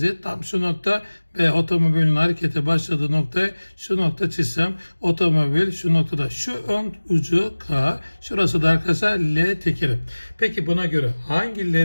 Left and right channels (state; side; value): inverted; both; correlation -1.00